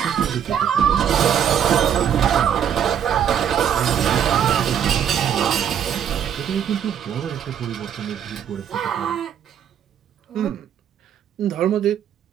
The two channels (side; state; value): left; quieter; 9.0 dB